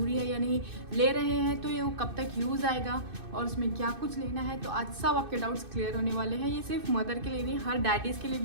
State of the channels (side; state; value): left; late; 2.6 ms